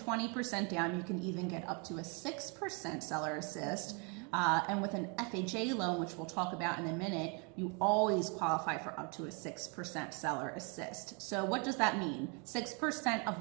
down, you can even get up to a 6% seller assist. And with an FHA loan, which we'll talk about in a minute, you always qualify for up to a 6% seller assist. So what does that mean? 6% of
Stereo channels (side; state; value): left; quieter; 34.4 dB